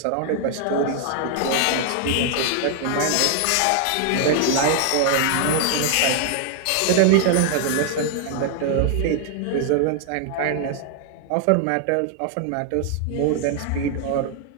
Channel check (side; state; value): both; different; correlation 0.00